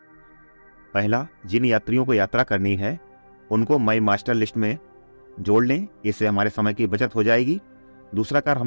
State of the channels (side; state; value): both; inverted; correlation -1.00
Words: पहला, जिन यात्रियों को यात्रा करनी है उनको माई मास्टर लिस्ट में जोड़ लें, इससे हमारे समय की बचत हो जाएगी। दूसरा कार्य